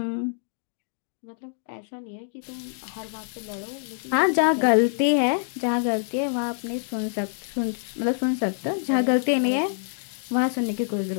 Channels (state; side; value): silent; right; digital silence